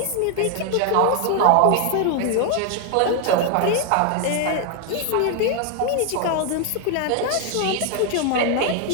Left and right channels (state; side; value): different; both; correlation 0.00